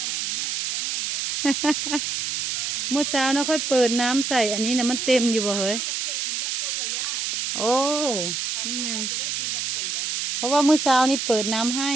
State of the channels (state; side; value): noise; right; hiss, 1 dB below the sound